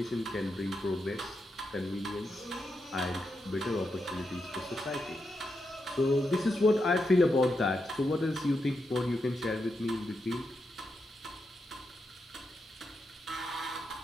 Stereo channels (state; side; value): normal; both; correlation 0.85